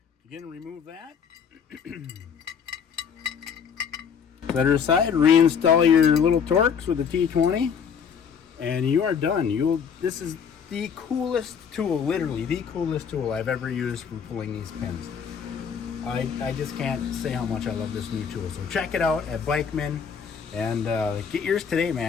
Again, remove that. Set her aside. Reinstall your little Torx with the T20, and you are done. This is the coolest tool, literally the coolest tool I've ever used for pulling these pins. I just can't say how much I love this new tool. So check it out at Bikeman and get yours today,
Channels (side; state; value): right; quieter; 7.0 dB